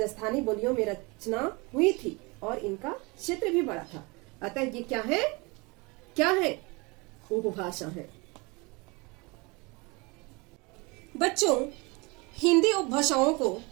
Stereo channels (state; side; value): quieter; left; 27.1 dB